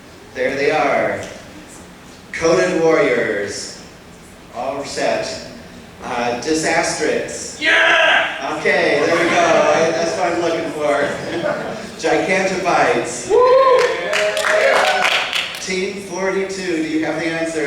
There they are. Coded Warriors. All set. Disastrix. Yeah! Okay, there we go. That's what I'm looking for. Gigantobytes. Team 42, do you have the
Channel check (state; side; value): identical; both; correlation 1.00